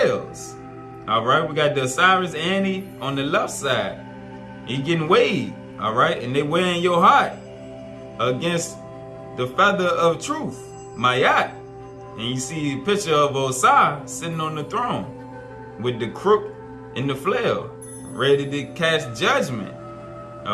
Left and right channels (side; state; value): both; identical; correlation 1.00